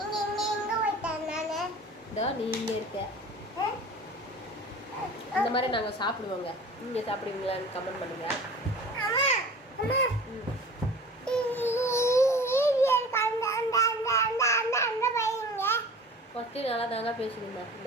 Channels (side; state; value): both; normal; correlation 0.41